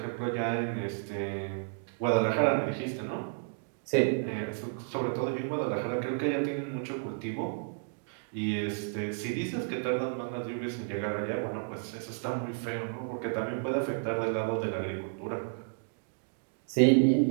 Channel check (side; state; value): left; silent; digital silence